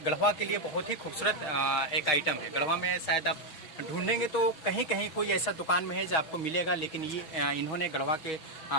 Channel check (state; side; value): late; right; 6.1 ms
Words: गढ़वा के लिए बहुत ही खूबसूरत एक आइटम है। गढ़वा में शायद आप ढूंढेंगे तो कहीं कहीं कोई ऐसा दुकान में है जो आपको मिलेगा, लेकिन ये इन्होंने गढ़वा के